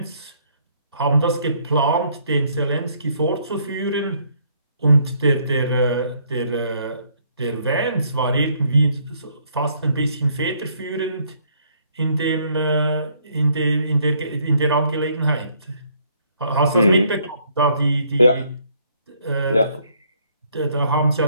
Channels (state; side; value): inverted; both; correlation -0.67